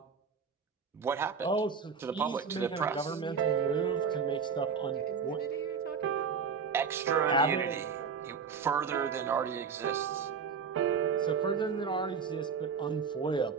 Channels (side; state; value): left; quieter; 5.9 dB